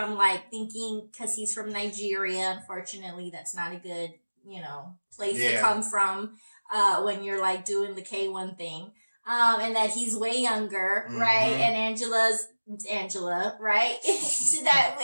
like thinking because he's from Nigeria, unfortunately, that's not a good, place to come from when you're like doing the K1 thing. And that he's way younger, right? And Angela, right? That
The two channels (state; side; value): inverted; both; correlation -1.00